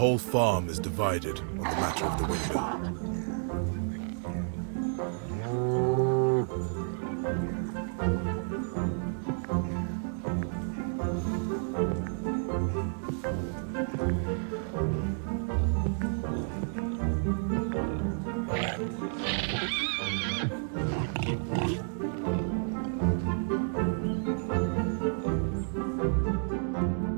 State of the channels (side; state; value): left; silent; 57 dB below the other